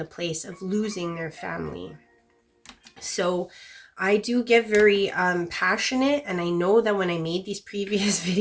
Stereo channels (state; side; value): identical; both; correlation 1.00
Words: place of losing their family. So I do get very passionate, and I know that when I made these previous